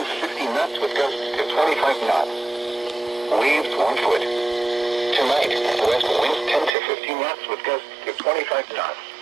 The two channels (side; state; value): left; drops out; at 6.7 s